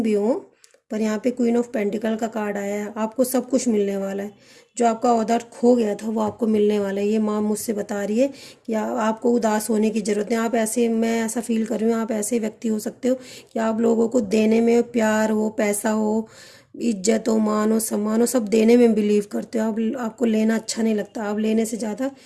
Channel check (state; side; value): identical; both; correlation 1.00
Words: भी हो, पर यहाँ पे क्वीन ऑफ पेंटिकल का कार्ड आया है। आपको सब कुछ मिलने वाला है। जो आपका ऑर्डर खो गया था वो आपको मिलने वाला है। ये माँ मुझसे बता रही है कि आपको उदास होने की ज़रूरत नहीं। आप ऐसे, मैं ऐसा फील कर रही हूँ, आप ऐसे व्यक्ति हो सकते हो कि आप लोगों को देने में, प्यार हो, पैसा हो, इज्जत हो, मान हो, सम्मान हो, सब देने में बिलीव करते हो। आपको लेना अच्छा नहीं लगता। आप लेने से ज़्यादा